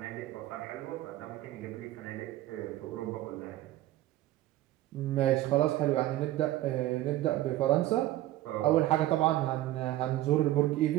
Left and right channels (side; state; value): left; quieter; 15.4 dB